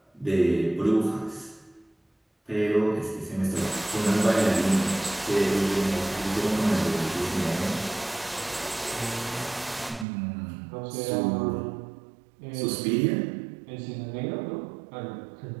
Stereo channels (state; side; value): drops out; left; at 10.1 s